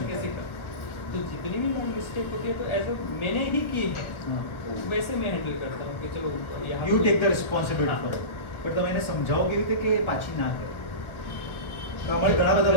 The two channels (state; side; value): late; right; 1.2 ms